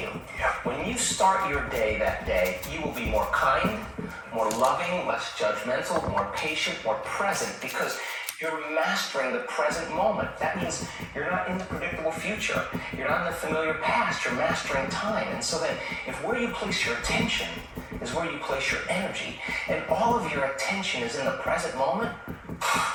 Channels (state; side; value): identical; both; correlation 1.00